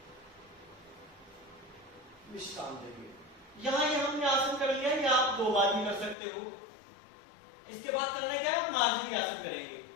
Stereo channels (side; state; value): right; drops out; at 6.2 s